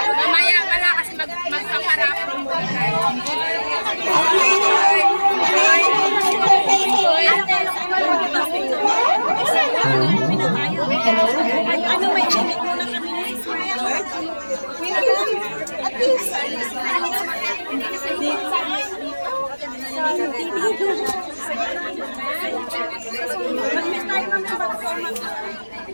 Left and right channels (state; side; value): inverted; both; correlation -1.00